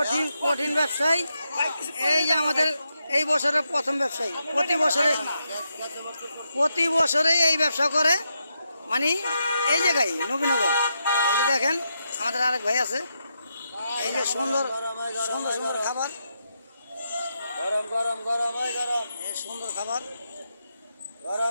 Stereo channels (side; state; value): both; inverted; correlation -0.83